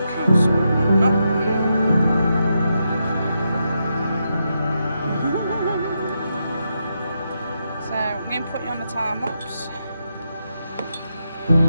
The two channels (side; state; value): both; inverted; correlation -0.84